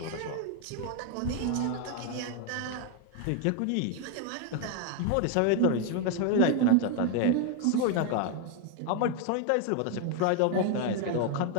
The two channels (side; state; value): both; different; correlation 0.01